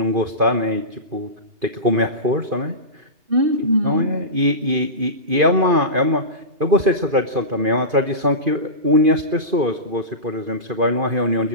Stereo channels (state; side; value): late; left; 2.5 ms